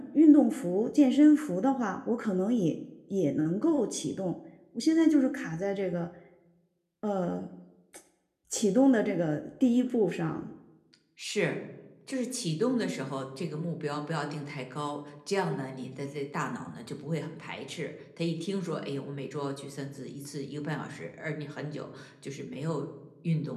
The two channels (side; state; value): both; identical; correlation 1.00